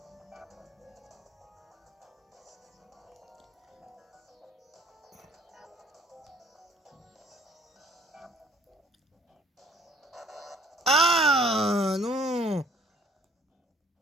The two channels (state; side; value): normal; both; correlation 0.56